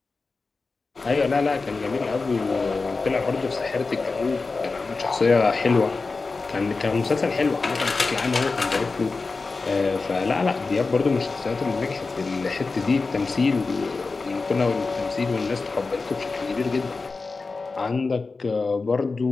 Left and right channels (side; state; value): right; quieter; 4.0 dB